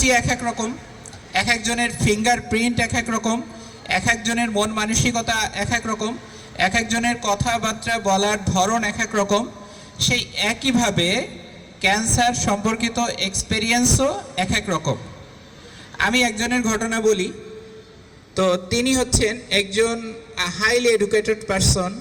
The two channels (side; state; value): both; identical; correlation 1.00